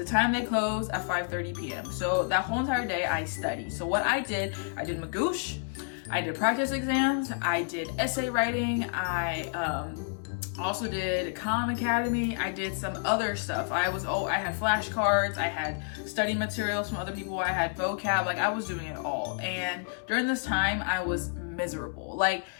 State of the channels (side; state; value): right; silent; 58 dB below the other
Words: time they close at 5:30 p.m. So that whole entire day I studied. So what I did Magoosh, I did practice exams, I did essay writing, I also did Khan Academy, I did some other stuff. I had flashcards, I had study materials from other people, I had vocab, like I was doing it all. And during this time, I was miserable. Like